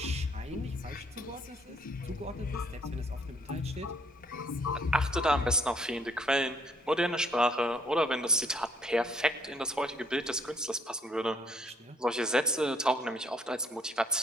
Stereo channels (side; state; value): both; normal; correlation 0.65